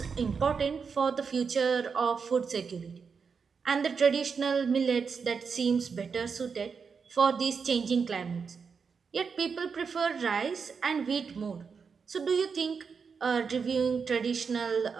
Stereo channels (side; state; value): left; quieter; 5.7 dB